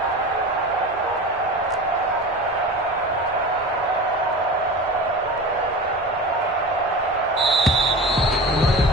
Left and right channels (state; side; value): normal; both; correlation 0.31